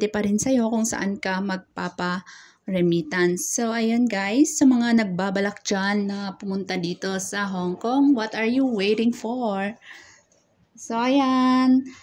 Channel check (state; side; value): identical; both; correlation 1.00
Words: pa rin sa'yo kung saan ka magpapa-remittance. So, ayun guys, sa mga nagbabalak dyan na pumunta dito sa Hong Kong, what are you waiting for? So, ayan.